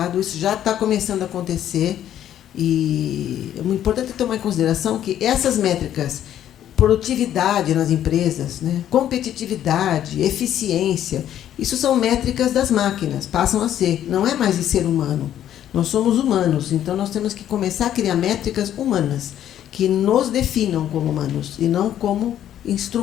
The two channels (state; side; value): quieter; right; 11.1 dB